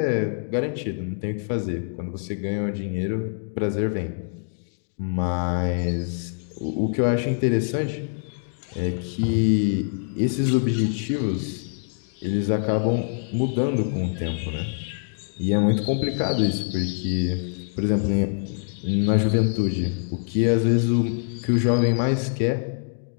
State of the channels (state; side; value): silent; right; digital silence